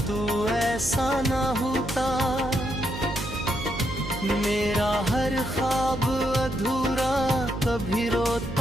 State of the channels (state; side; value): noise; right; hum, 9 dB below the sound